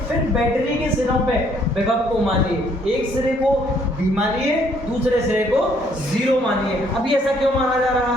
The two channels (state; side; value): normal; both; correlation 0.65